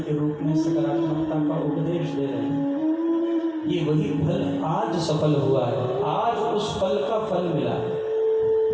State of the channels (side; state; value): both; identical; correlation 1.00